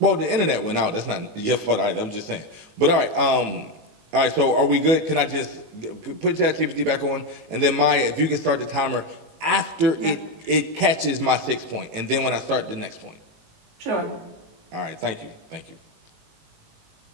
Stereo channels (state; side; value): late; left; 18 ms